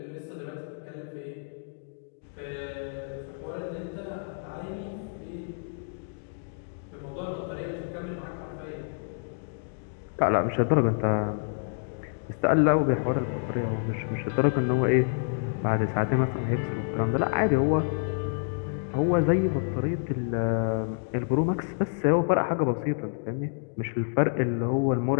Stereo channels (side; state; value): right; silent; digital silence